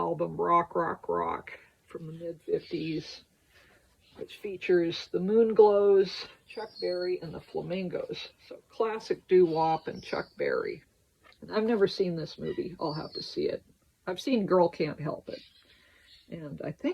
Rock, Rock, Rock from the mid-50s, which features the Moonglows, Chuck Berry, and the Flamingos. So classic doo-wop and Chuck Berry. And I've never seen this movie. I'll have to see it. I've seen Girl Can't Help It. And I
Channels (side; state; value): both; identical; correlation 1.00